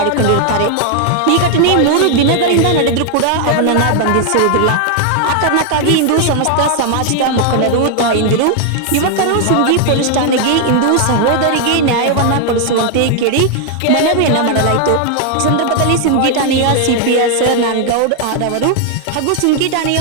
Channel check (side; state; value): both; different; correlation 0.00